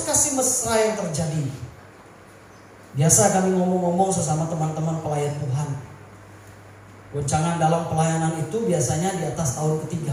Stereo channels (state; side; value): identical; both; correlation 1.00